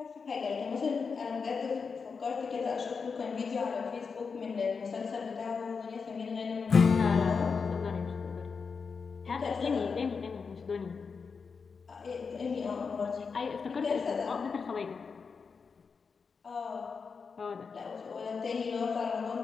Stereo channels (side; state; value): right; quieter; 5.3 dB